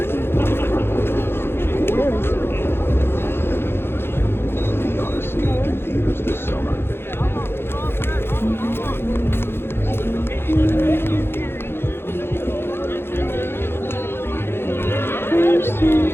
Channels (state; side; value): late; right; 0.11 ms